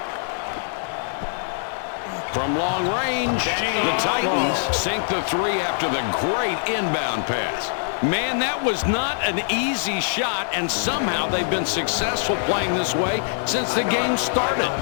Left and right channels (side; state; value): right; silent; digital silence